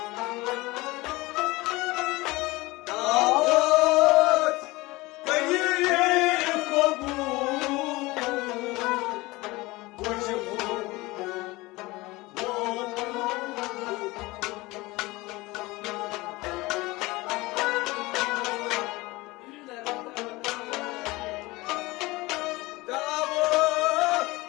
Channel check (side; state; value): right; quieter; 21.5 dB